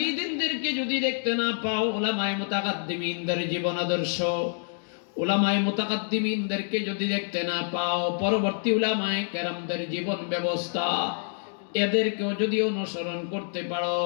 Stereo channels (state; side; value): silent; right; digital silence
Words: যদি দেখতে না পাও, উলামায়ে মুতাকাদ্দিমিনদের জীবন আদর্শ, উলামায়ে মুতাকাদ্দিমিনদেরকে যদি দেখতে না পাও, পরবর্তী উলামায়ে কেরামদের জীবন ব্যবস্থা, এদেরকেও যদি অনুসরণ করতে পারো,